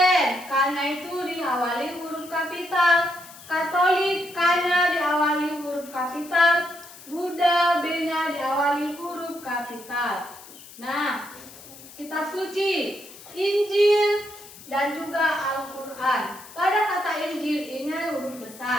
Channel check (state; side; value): noise; left; hiss, 18 dB below the sound